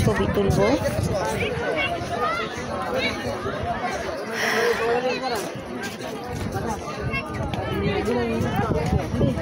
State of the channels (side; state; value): both; identical; correlation 1.00